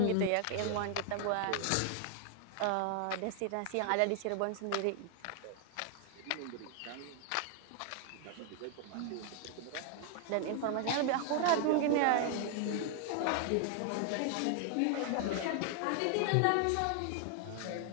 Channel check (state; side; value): different; both; correlation 0.00